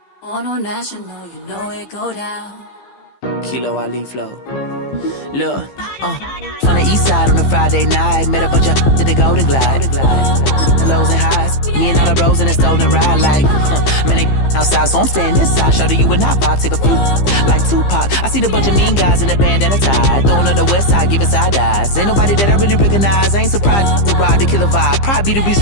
On a national, you know it go down. Kilo Ali flow. Look, from the east side on a Friday night, met a bunch of to the Golden Glide. The lows and highs, me and all the bros in the stolen ride, like, man, they outside, so I'm staying inside. Show you and I vibe, take a few, like Tupac. I seen a bunch of mean guys in the band and a tie, throwing up the west side, giving side eyes. Ain't nobody that I really recognize, I ain't surprised to ride the killer vibe. Probably be the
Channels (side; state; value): right; late; 15 ms